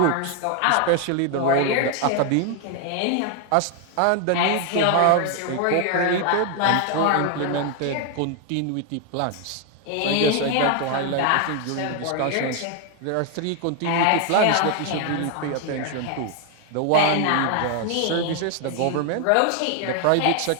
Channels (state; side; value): different; both; correlation 0.01